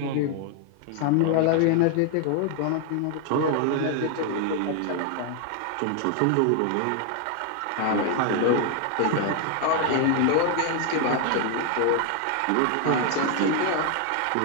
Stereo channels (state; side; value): different; both; correlation 0.00